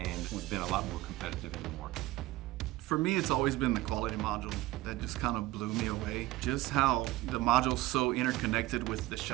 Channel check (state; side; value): quieter; left; 17.7 dB